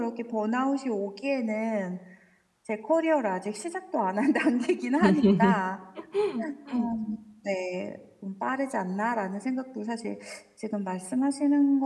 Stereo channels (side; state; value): both; identical; correlation 1.00